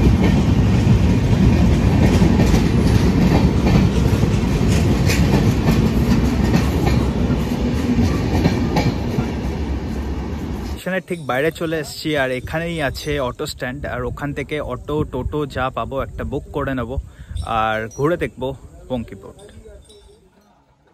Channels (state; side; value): identical; both; correlation 1.00